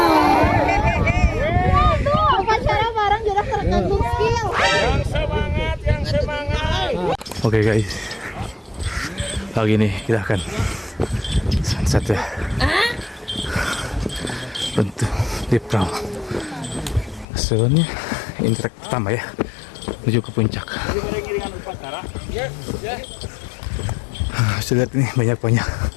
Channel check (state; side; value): drops out; right; at 17.2 s